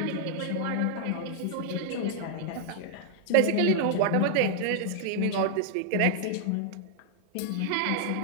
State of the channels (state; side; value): different; both; correlation 0.00